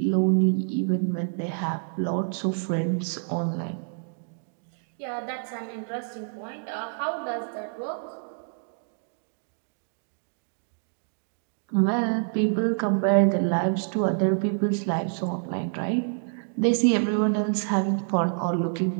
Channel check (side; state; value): left; silent; digital silence